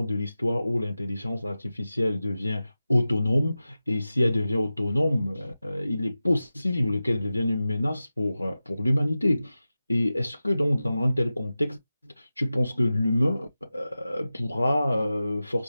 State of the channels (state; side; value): inverted; both; correlation -0.94